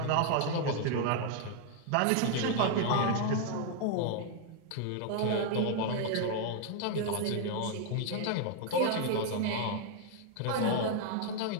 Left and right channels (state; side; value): different; both; correlation 0.00